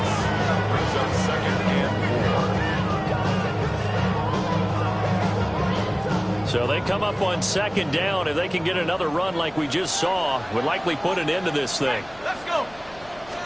Brings up 2nd and 4. So they come up on 2nd down. If they can get another run like we just saw, would likely put an end to this thing. Let's go.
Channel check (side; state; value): left; noise; rumble, 24 dB below the sound